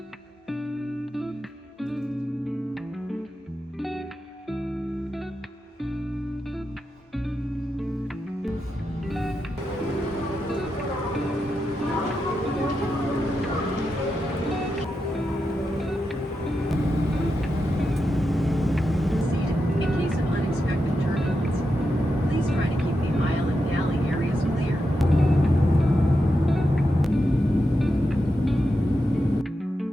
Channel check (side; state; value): both; normal; correlation 0.87